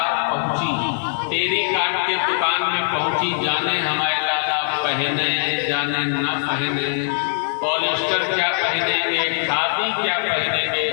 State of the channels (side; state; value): right; silent; digital silence